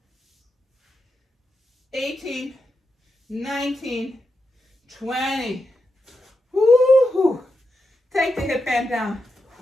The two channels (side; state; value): both; normal; correlation 0.87